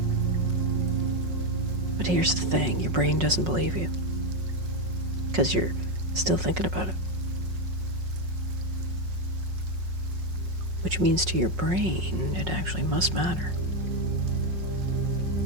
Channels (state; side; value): late; left; 5.5 ms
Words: But here's the thing, your brain doesn't believe you. Because you're still thinking about it. Which means to your brain, it actually must matter.